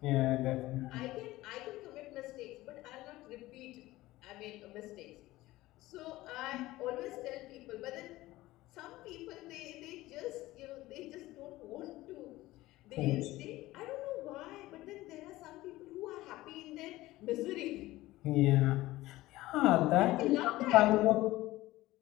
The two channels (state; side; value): quieter; right; 17.6 dB